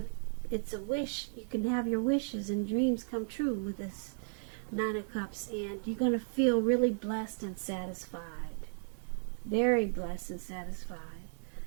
It's a wish. You can have your wishes and dreams come true with this Nine of Cups. And you're going to feel really blessed and satisfied. Very blessed and satisfied.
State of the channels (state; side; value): silent; left; digital silence